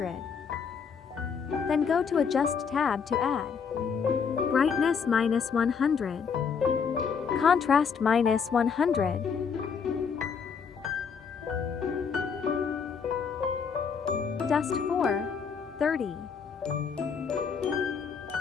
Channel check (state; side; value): quieter; right; 6.3 dB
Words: Then go to Adjust tab to add brightness -100, contrast -100, dust 430,